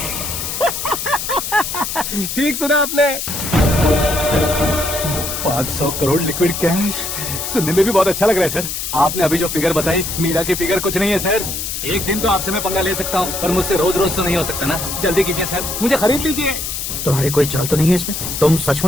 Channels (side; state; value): left; noise; hiss, 4 dB below the sound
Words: ठीक सुना आपने। 500 करोड़ लिक्विड कैश सुनने में भी बहुत अच्छा लग रहा है सर। आपने अभी जो फिगर बताई, मीरा की फिगर कुछ नहीं है सर। एक दिन तो आपसे मैं पंगा ले सकता हूँ, पर मुझसे रोज रोज तो नहीं हो सकता ना। जल्दी कीजिए सर, मुझे खरीद लीजिए। तुम्हारी कोई चाल तो नहीं है इसमें? तुम